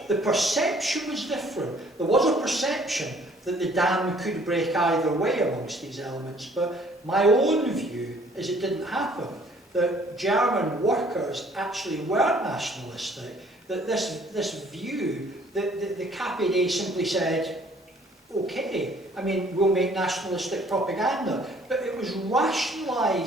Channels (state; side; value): normal; both; correlation 0.58